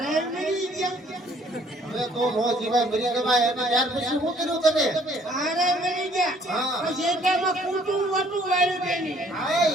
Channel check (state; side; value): normal; both; correlation 0.60